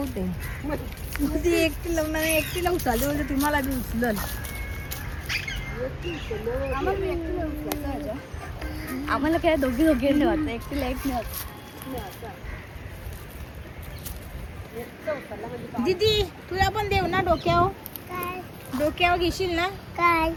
ती एकटीला उचलते, बोलते तुम्हाला बी उचलल. आम्हाला काय दोघी ठेवायचं, एकटीला एक नाही. दीदी तुला पण देऊ ना डोक्यावर घेशील ना? काय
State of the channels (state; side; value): identical; both; correlation 1.00